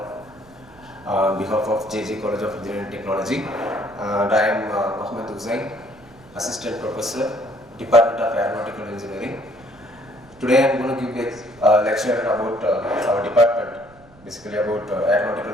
on behalf of JJ College of Engineering and Technology. And I am Mohamed Hussain, Assistant Professor, Department of Aeronautical Engineering. Today I am going to give a lecture about our department, basically about aeronautical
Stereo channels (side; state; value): right; noise; rumble, 26 dB below the sound